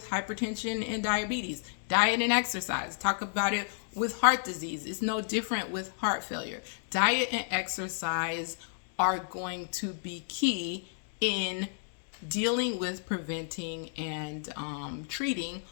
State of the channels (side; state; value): right; silent; digital silence